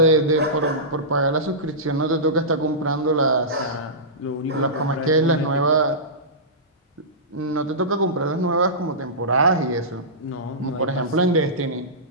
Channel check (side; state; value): both; normal; correlation -0.18